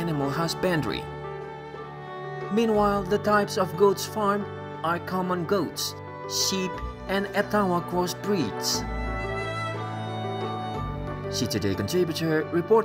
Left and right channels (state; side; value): identical; both; correlation 1.00